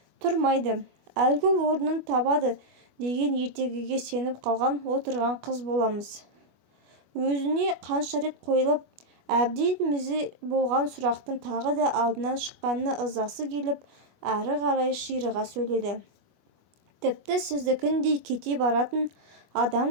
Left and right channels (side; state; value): left; late; 25 ms